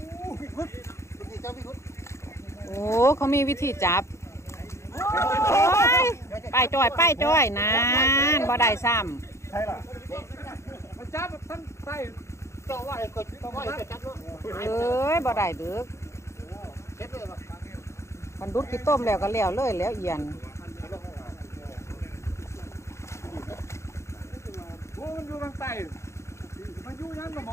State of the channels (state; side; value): late; right; 0.14 ms